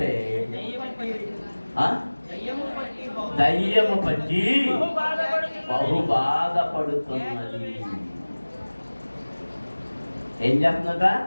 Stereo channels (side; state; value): both; inverted; correlation -1.00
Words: దయ్యము పట్టి బహు బాధపడుతున్నది. ఏం చేస్తుందట?